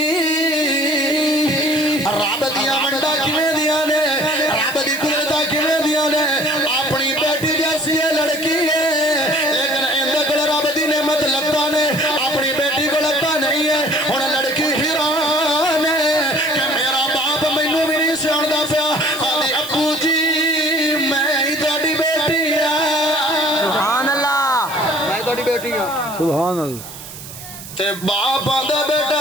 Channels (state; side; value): noise; right; hiss, 14 dB below the sound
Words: رب دیا منڈا کیویں دیا نے رب دی قدرت کیویں دیا نے اپنی بیٹی جیسی ہے لڑکی ہے لیکن اندے کول رب دی نعمت لگتا نے اپنی بیٹی کو لگتا نہیں ہے ہن لڑکی حیران ہے کہ میرا باپ مینوں بھی نہیں سیاںدا پیا آدھی ابو جی میں ہی تہاڈی بیٹی ہاں سبحان اللہ میں تہاڈی بیٹی ہاں سبحان اللہ تے باپ آندا